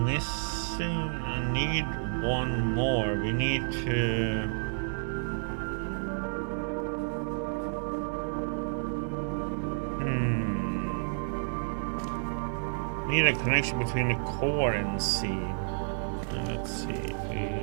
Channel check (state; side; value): silent; left; digital silence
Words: missing. I need one more. We need to. Need a connection between the core and C. Let's see if